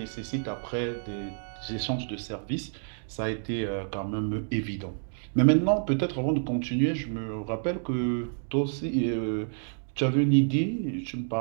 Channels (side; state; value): left; silent; 59 dB below the other